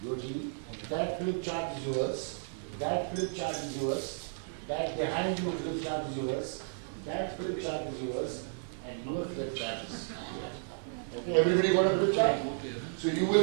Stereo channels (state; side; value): silent; left; 56 dB below the other